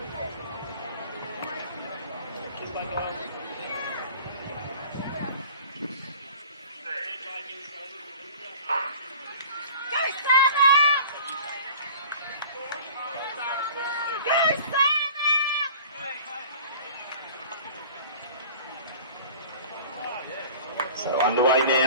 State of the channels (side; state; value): both; inverted; correlation -0.44